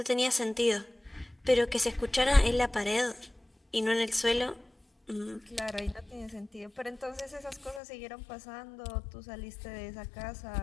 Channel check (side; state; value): right; drops out; at 7.8 s